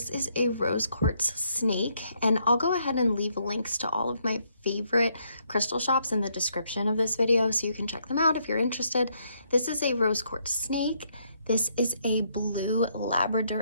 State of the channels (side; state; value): both; inverted; correlation -0.73